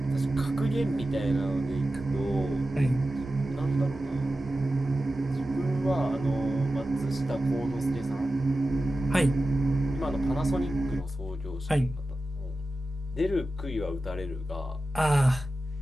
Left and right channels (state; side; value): normal; both; correlation 0.94